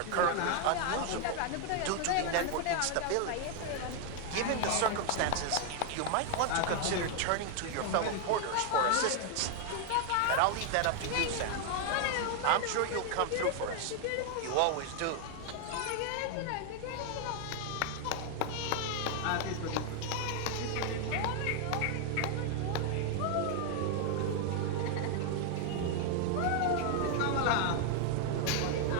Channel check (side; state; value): both; different; correlation 0.00